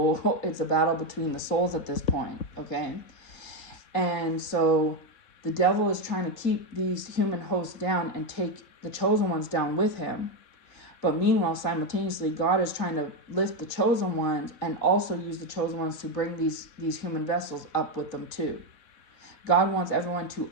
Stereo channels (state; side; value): late; right; 3.5 ms